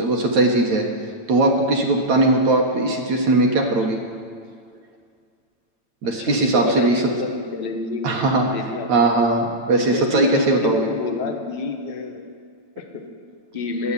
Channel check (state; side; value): late; left; 9.0 ms